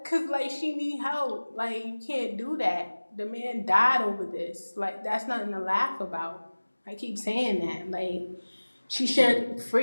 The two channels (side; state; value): both; inverted; correlation -1.00